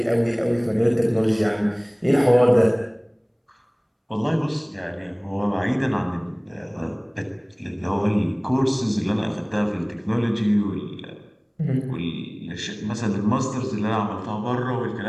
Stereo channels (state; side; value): identical; both; correlation 1.00